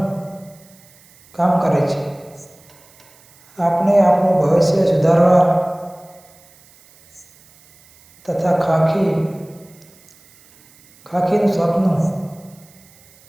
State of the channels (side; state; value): right; noise; hiss, 28 dB below the sound